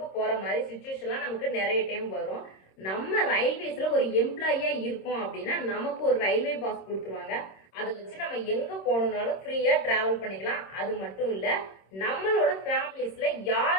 போகிற மாதிரி சுச்சுவேஷன்லாம் நமக்கு நிறைய டைம் வரும். நம்ம ரயில்வேஸில் ஒரு எம்ப்ளாயியாக இருக்கோம் அப்படின்னா நமக்கு ஒரு ரயில்வே பாஸ் கொடுத்துருவாங்க. அதை வச்சு நம்ம எங்கே போகணுன்னாலும் ஃப்ரீயாக ட்ராவல் பண்ணிக்கலாம். அது மட்டும் இல்லை, நம்மளோட ஃபேமிலிஸில்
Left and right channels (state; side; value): late; right; 26 ms